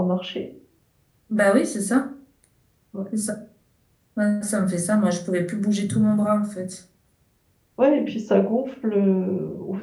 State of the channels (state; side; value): identical; both; correlation 1.00